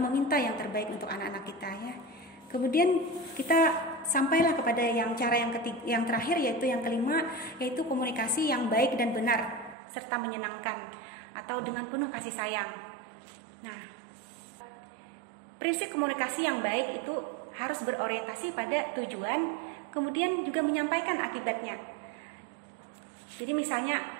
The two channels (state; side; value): drops out; left; at 9.8 s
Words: yang terbaik untuk anak-anak kita ya. Kemudian kita sampailah kepada cara yang terakhir, yaitu yang kelima, yaitu komunikasi yang baik dan benar serta menyenangkan atau dengan penuh kasih sayang. Nah, prinsip komunikasi yang baik itu harus berorientasi pada tujuan, kemudian juga menyampaikan akibatnya. Jadi misalnya